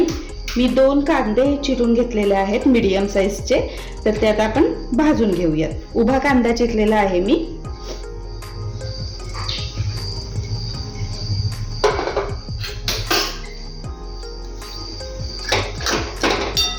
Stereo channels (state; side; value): identical; both; correlation 1.00